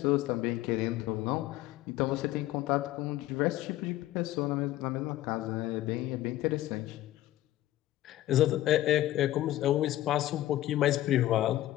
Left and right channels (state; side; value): quieter; right; 14.8 dB